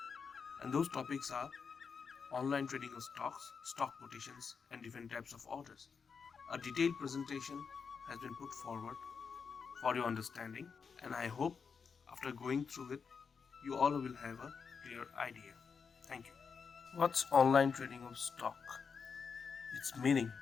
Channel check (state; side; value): quieter; right; 5.8 dB